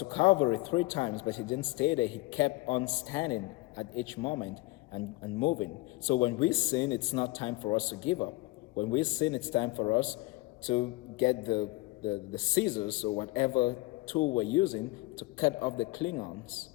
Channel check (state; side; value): quieter; right; 20.9 dB